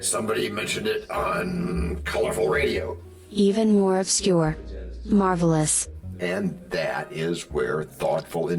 somebody mentioned it on colorful radio. Even more obscure. Marvelous. And that is where thoughtful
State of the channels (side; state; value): both; identical; correlation 1.00